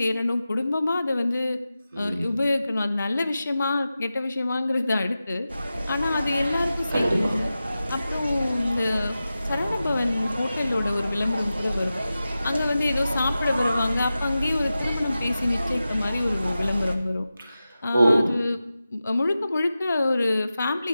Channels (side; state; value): both; inverted; correlation -0.93